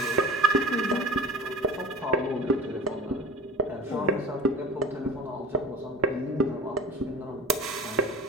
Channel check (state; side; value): normal; both; correlation 0.37